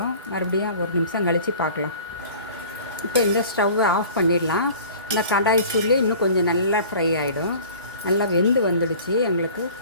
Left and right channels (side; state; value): both; inverted; correlation -0.45